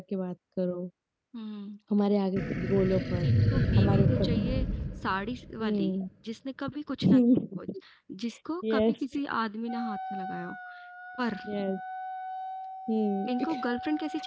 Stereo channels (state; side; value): identical; both; correlation 1.00